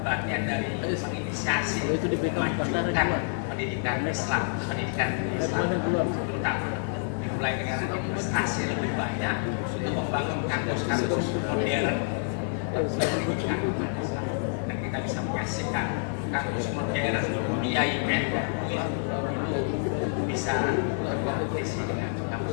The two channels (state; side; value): silent; right; 59 dB below the other